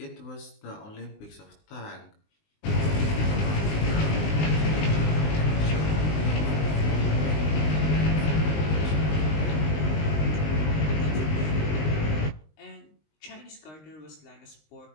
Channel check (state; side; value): late; right; 19 ms